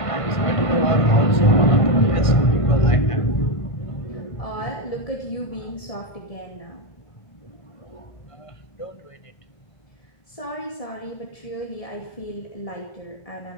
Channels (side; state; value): right; late; 1.5 ms